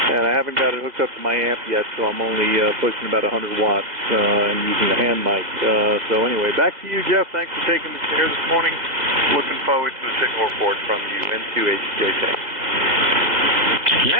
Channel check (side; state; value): left; late; 2.0 ms